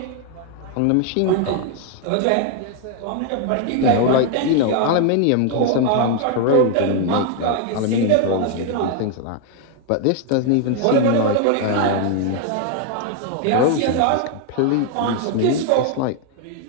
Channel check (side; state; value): both; different; correlation 0.01